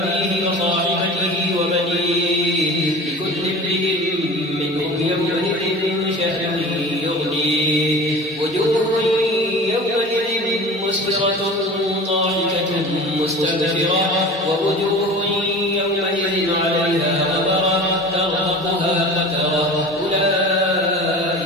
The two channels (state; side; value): normal; both; correlation 0.37